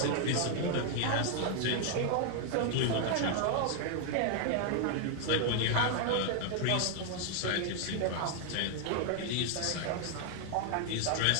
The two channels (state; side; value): different; both; correlation 0.00